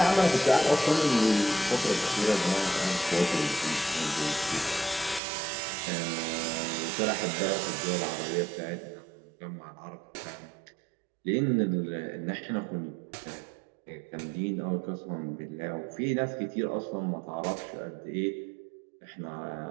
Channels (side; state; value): left; drops out; at 5.2 s